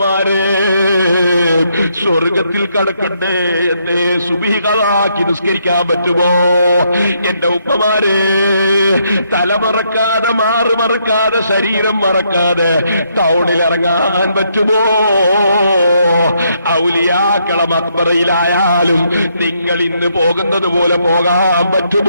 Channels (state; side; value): inverted; both; correlation -0.74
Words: സ്വർഗത്തിൽ കടക്കണ്ടേ എന്നെ സുബിഹികളാക്കി നിസ്കരിക്കാൻ പറ്റുമോ? എന്റെ ഉമ്മമാരെ, തലമറക്കാതെ മാറ് മറക്കാതെ ശരീരം മറക്കാതെ ടൗണിൽ ഇറങ്ങാൻ പറ്റുമോ? ഔലിയാക്കള മക്ബറയിലായാലും നിങ്ങൾ ഇന്ന് പോകുന്നത് പോലെ പോകാൻ